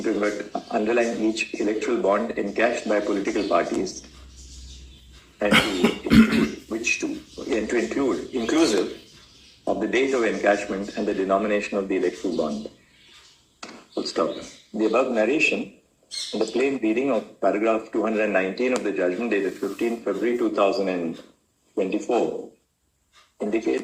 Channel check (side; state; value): both; identical; correlation 1.00